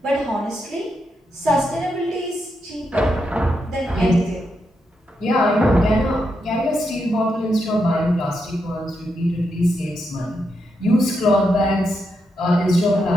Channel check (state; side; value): normal; both; correlation 0.83